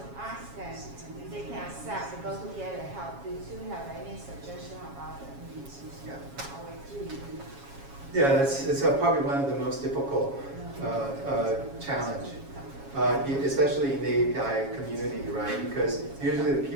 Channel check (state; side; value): late; left; 7.3 ms